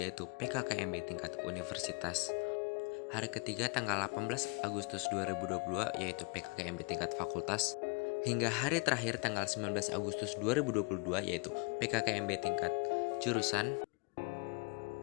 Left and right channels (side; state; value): right; quieter; 32.1 dB